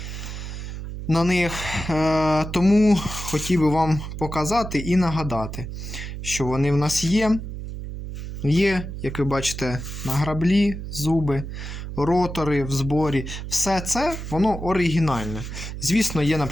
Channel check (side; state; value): right; noise; hum, 8 dB below the sound